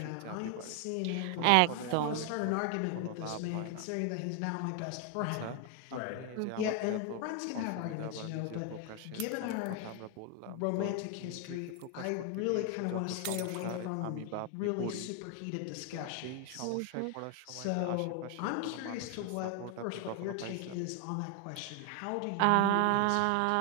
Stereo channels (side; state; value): both; different; correlation 0.01